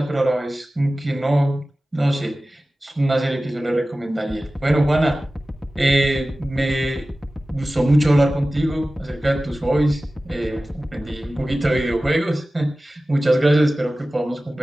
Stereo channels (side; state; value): both; normal; correlation 0.96